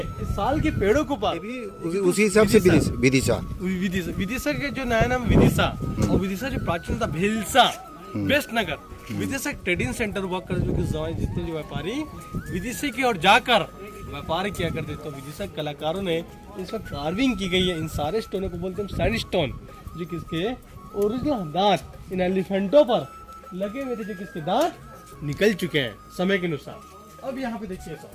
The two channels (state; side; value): identical; both; correlation 1.00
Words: इस साल के पेड़ों के ऊपर, उसी हिसाब से विदिशा के जो नया नाम विदिशा, और विदिशा जो प्राचीन था भिलसा, वेस्ट नगर विदिशा ट्रेडिंग सेंटर हुआ कर, जो कि जितने जो व्यापारी विदिशा की ओर जाकर व्यापार किया करते, तो विदिशा कलाकारों ने इस पर कार्विंग की गई है। इन सारे स्टोनों को बोलते हैं सैंडस्टोन, जो किसके ओरिजिनल दांत इन एलिफेंटों पर लगे हुए थे, जो किसके दांत निकल चुके हैं समय के अनुसार। अब यहाँ पे देखिए सर,